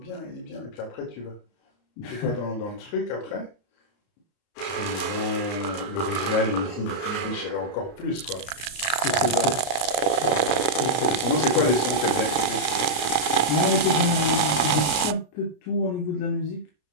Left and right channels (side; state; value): right; late; 33 ms